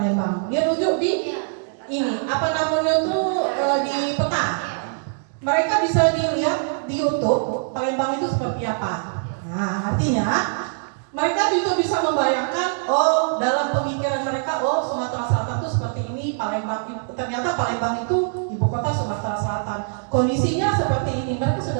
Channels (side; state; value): left; silent; digital silence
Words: Dia tunjuk di ini, apa namanya tuh di peta. Mereka bisa dilihat di YouTube Palembang itu seperti apa. Nah, artinya mereka juga bisa membayangkan, oh dalam pemikiran mereka, oh Sumatera Selatan itu seperti ini, Palembang ternyata Palembang itu ibu kota Sumatera Selatan. Kondisinya seperti ini, mereka